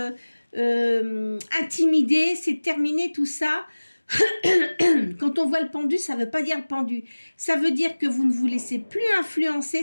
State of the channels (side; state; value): both; inverted; correlation -1.00